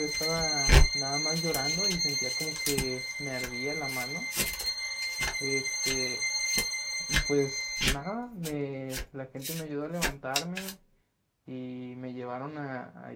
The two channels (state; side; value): identical; both; correlation 1.00